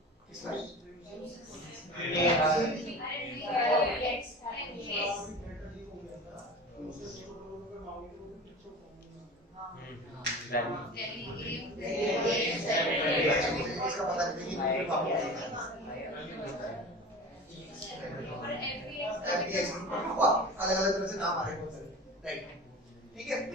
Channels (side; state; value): both; normal; correlation 0.35